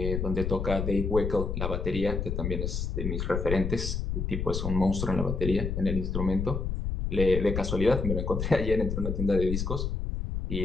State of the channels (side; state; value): left; noise; rumble, 2 dB below the sound